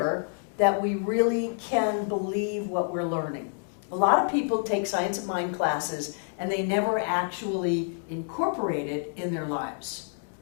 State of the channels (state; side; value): silent; right; 59 dB below the other